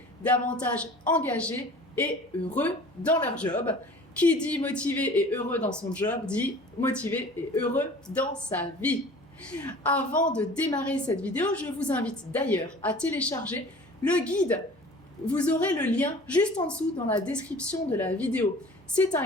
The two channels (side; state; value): both; normal; correlation 0.44